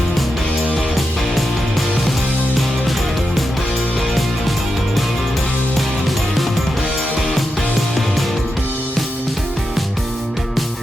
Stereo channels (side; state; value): both; normal; correlation 0.87